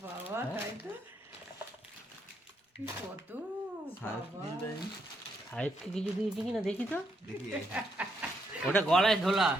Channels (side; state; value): both; normal; correlation 0.77